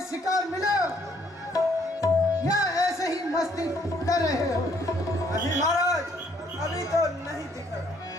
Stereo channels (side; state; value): both; normal; correlation 0.66